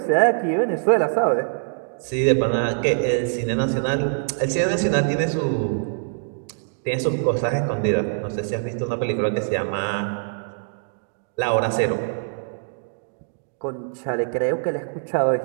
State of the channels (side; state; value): left; silent; digital silence